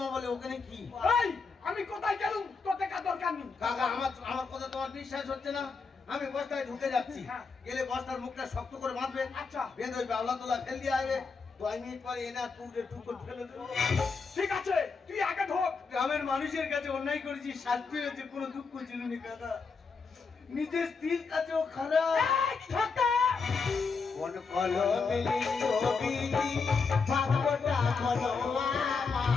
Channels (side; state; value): right; quieter; 4.8 dB